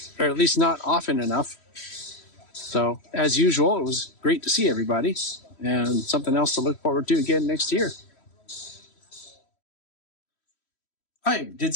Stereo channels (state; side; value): late; right; 3.1 ms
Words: or at least not often enough. So, as usual, it was great to see everybody and something else to look forward to again next year. I did